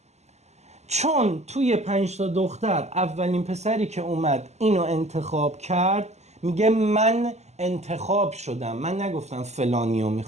چون توی 5 تا دختر اولین پسری که اومد اینو انتخاب کرد میگه من انتخاب شدم، من نگفتم فلانیو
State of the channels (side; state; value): left; late; 0.33 ms